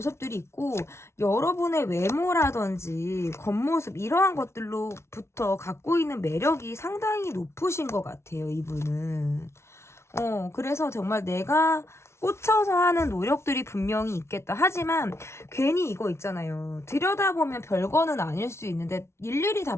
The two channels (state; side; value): late; right; 0.13 ms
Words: 있고, 여러분의 외모라든지 겉모습, 이러한 것들로부터 갖고 있는 매력이 상당히 높으신 것 같아요, 이분은. 그래서 정말 내가 꽂혀서 하는 노력들이 분명히 있겠다. 하지만 괜히 이거 있잖아요. 들여다보면 별거는 아닐 수 있는데 일일이 다